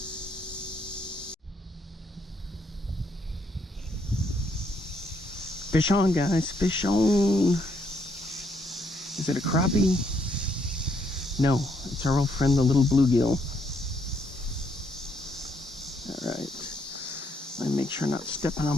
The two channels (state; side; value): normal; both; correlation 0.72